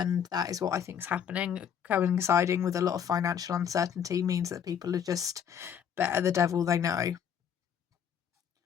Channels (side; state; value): right; quieter; 8.2 dB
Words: that is what I think is happening. Coinciding with a lot of financial uncertainty means that people are just better the devil they know.